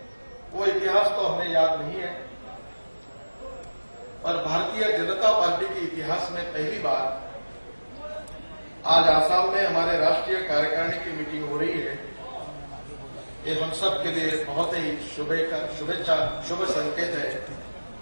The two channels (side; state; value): both; inverted; correlation -1.00